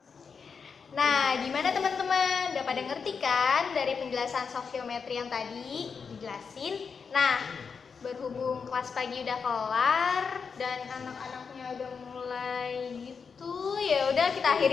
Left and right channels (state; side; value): quieter; right; 5.7 dB